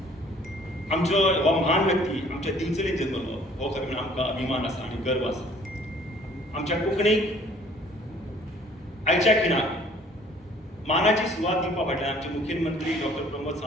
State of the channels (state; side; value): normal; both; correlation 0.56